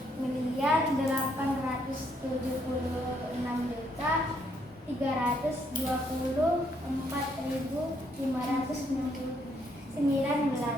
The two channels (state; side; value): normal; both; correlation 0.72